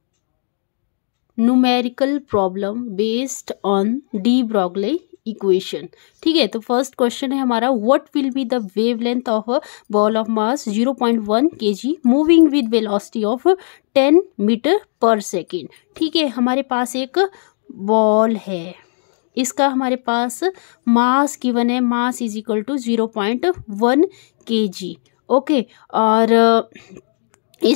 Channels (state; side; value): silent; right; digital silence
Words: numerical problem based on de Broglie equation. ठीक है, तो फर्स्ट क्वेश्चन है हमारा, what will be the wavelength of a ball of mass 0.1 kg moving with velocity of 10 metre पर सेकेंड। ठीक है, हमारे पास एक बॉल है, इसका हमारे पास मास गिवन है, mass is equal to 0.1 kg। Okay, और